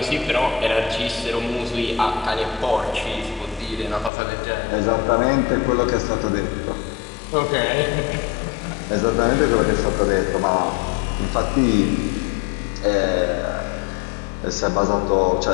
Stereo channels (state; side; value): drops out; right; at 4.1 s